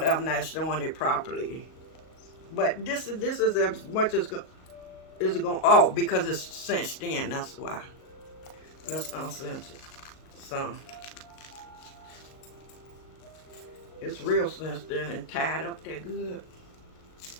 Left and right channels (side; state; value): right; late; 38 ms